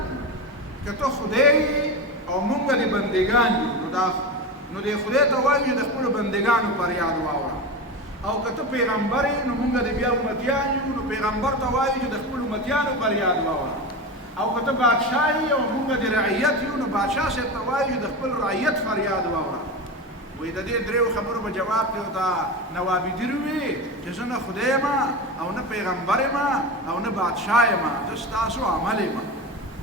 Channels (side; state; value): both; normal; correlation 0.23